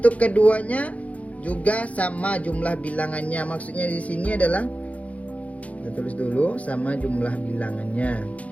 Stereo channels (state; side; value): late; right; 0.067 ms